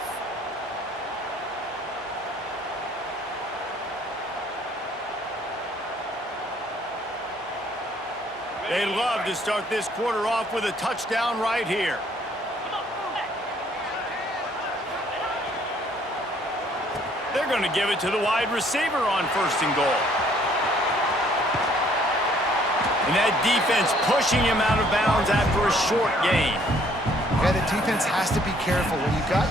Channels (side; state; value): both; normal; correlation 0.62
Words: They love to start this quarter off with a touchdown right here. They're going to give it to the wide receiver on 1st and goal. And that defense pushing him out of bounds after a short gain. Yeah, the defense has to be careful. When you've got